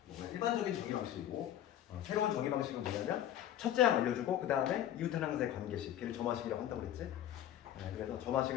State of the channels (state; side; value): quieter; right; 11.4 dB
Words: 일반적인 정리 방식이고, 새로운 정리 방식은 뭐냐면 첫째 항 알려주고 그 다음에 이웃 하나의 관계식, 걔를 점화식이라고 한다고 그랬지. 그래서